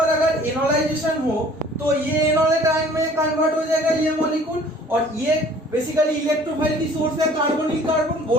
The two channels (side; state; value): both; normal; correlation 0.52